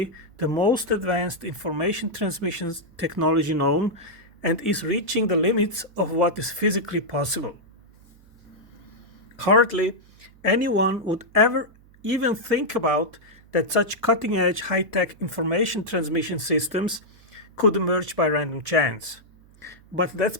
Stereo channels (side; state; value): right; noise; hum, 27 dB below the sound